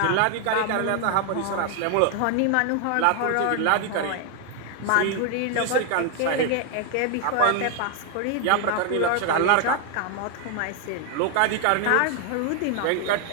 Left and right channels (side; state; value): both; different; correlation 0.00